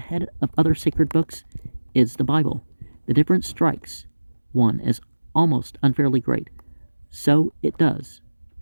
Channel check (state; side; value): inverted; both; correlation -1.00